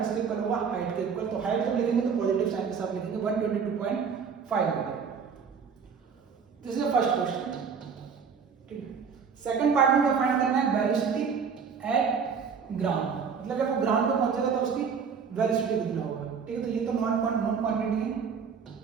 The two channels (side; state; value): left; quieter; 6.2 dB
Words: इक्वल होगा, हाइट के इक्वल। तो हाइट जब लिखेंगे तो पॉजिटिव साइन के साथ लिखेंगे 122.5 metre. This is the first question, ठीक है। सेकंड पार्ट में क्या फाइंड करना है, वेलोसिटी एट ग्राउंड, मतलब जब वो ग्राउंड पे पहुंचेगा तो उसकी वेलोसिटी कितना होगा, ठीक है। तो ये तो नॉन क्वांटिटी है।